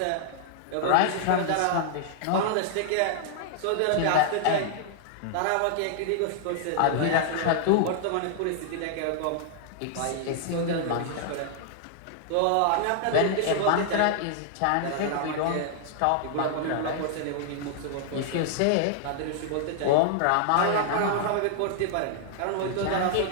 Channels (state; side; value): different; both; correlation -0.01